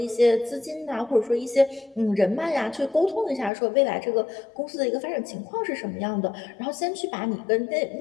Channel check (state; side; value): drops out; right; at 3.5 s